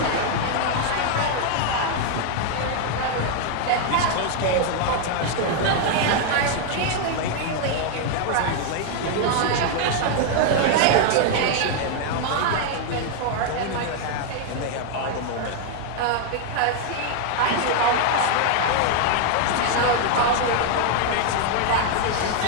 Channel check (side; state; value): both; different; correlation 0.00